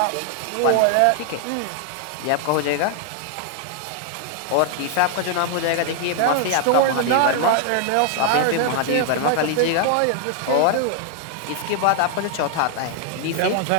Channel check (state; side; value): different; both; correlation 0.00